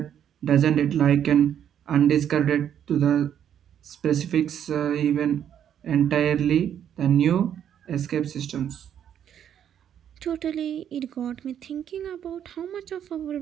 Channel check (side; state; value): left; quieter; 9.5 dB